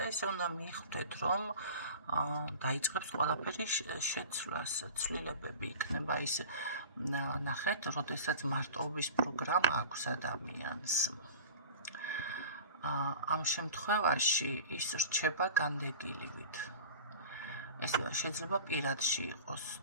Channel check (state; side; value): inverted; both; correlation -0.37